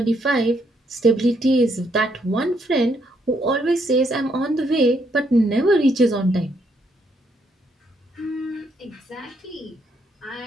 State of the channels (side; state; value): both; normal; correlation 0.74